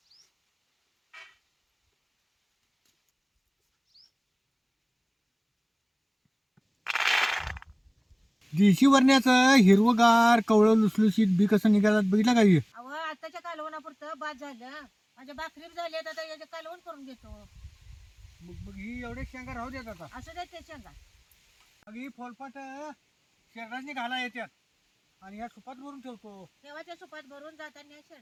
देशी वरण्याचं हिरवगार कवळं लुसलुशीत बी कसं निघालात बघितलं का हे? अव आताच्या कालवणापुरतं बाद झालं. माझ्या भाकरी बी झाली आता याचे कालवण करून घेतो. मग मग ही एवढे शेंगा राहू देत आता. असं देत ते शेंगा. मग ही फोलपाट शेरडाने घाला येतात आणि या सुपात भरून ठेवतो. तेव्हाच्या सुपात भरून जाताना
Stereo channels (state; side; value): identical; both; correlation 1.00